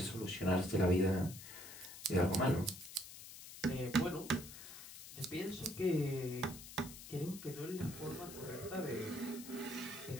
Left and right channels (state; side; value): noise; left; hiss, 13 dB below the sound